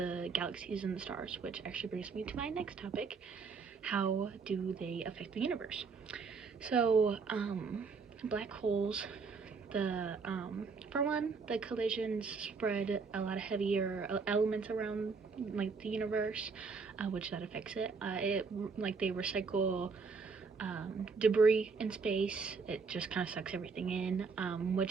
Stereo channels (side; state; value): left; quieter; 4.9 dB